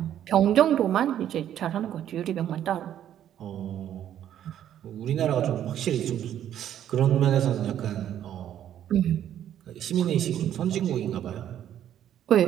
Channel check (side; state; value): left; quieter; 10.7 dB